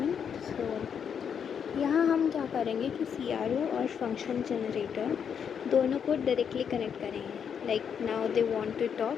So यहाँ हम क्या करेंगे कि CRO और फंक्शन जनरेटर दोनों को डायरेक्टली कनेक्ट करेंगे. Like now they want to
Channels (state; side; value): quieter; right; 7.5 dB